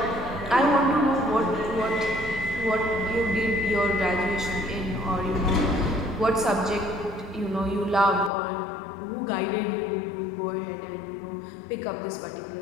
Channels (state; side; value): drops out; right; at 8.3 s